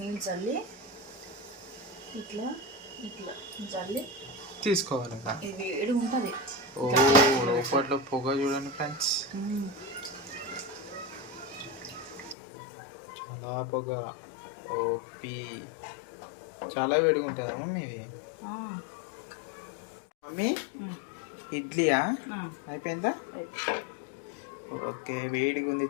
నీళ్ళు చల్లి ఇట్లా ఇట్లా చల్లి తీసుకోవాలి. ఇది వేడి ఉంటుంది. లోపట్లో పొగ చూడండి ఫ్రెండ్స్, చాలా పొగ. ఓపి చాలా వేడిగా ఉంటుందమ్మా మీది. మమ్మీ, ఇడ్లీయా అయిపోయిందా? ఓకే, వేడిగా ఉంది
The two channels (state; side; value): drops out; right; at 12.4 s